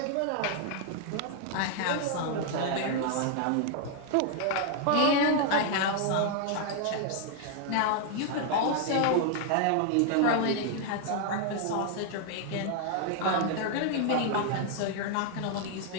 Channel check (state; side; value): different; both; correlation 0.00